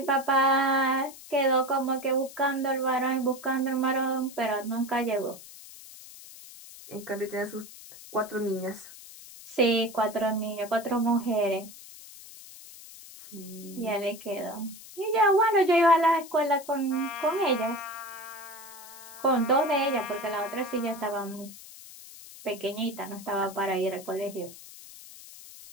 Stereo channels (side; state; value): left; noise; hiss, 17 dB below the sound